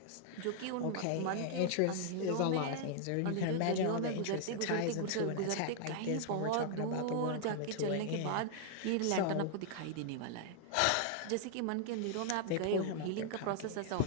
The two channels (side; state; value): both; different; correlation 0.00